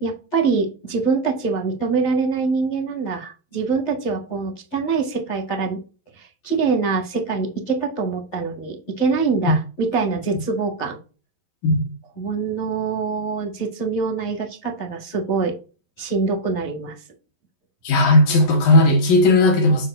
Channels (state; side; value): late; right; 11 ms